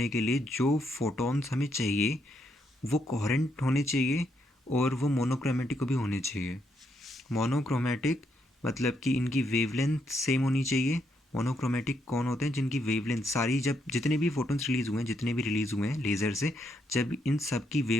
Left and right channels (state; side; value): normal; both; correlation 0.77